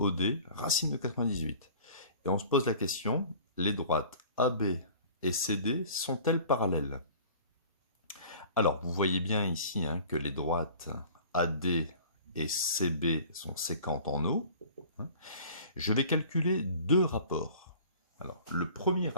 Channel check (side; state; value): both; inverted; correlation -0.46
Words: racine de 98. Et on se pose la question, les droites AB et CD sont-elles parallèles? Alors, vous voyez bien ici que les droites AD et CB sont séquentes en O. Je vais calculer deux rapports. Alors, le premier